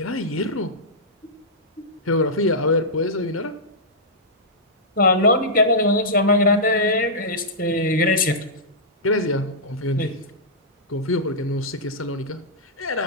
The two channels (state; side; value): normal; both; correlation -0.13